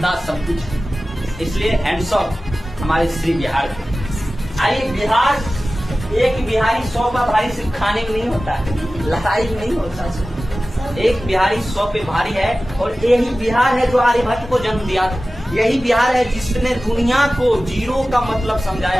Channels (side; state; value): both; normal; correlation 0.96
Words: सब कुछ। इसलिए हैंड्स ऑफ हमारे श्री बिहार। आइए, बिहार एक बिहारी 100 का भारी सिर्फ खाने में नहीं होता है, लड़ाई में नहीं होता। एक बिहारी 100 पे भारी है और यही बिहार है जो आर्यभट्ट को जन्म दिया था। यही बिहार है जिसने दुनिया को जीरो का मतलब